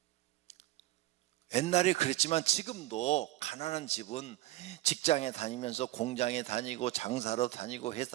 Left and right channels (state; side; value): quieter; left; 16.7 dB